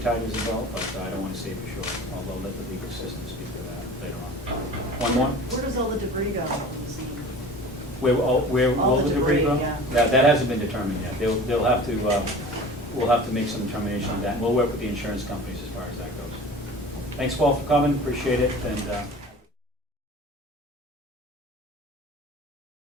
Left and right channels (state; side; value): normal; both; correlation 0.40